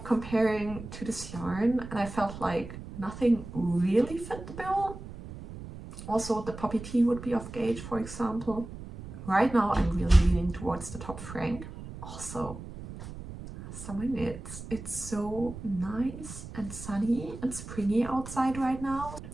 comparing to this yarn, and I felt like nothing really fit the bill. Also, the poppy tee would be off gauge, for example. Right now, I'm really leaning towards the Top Frank. Also, summer knits. It's so nice and sunny and springy outside right now.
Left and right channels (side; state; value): right; noise; rumble, 12 dB below the sound